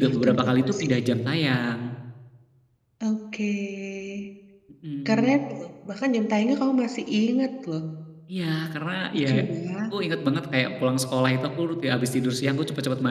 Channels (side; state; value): both; identical; correlation 1.00